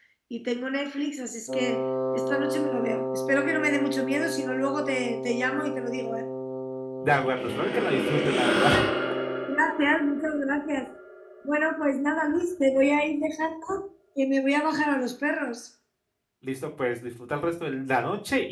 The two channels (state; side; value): identical; both; correlation 1.00